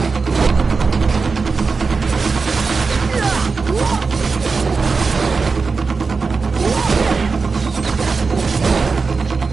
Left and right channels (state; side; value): quieter; left; 4.6 dB